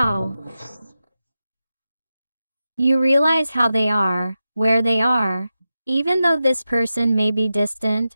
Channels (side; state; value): both; inverted; correlation -0.91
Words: You realize how they are, where they are, even though this person may be distant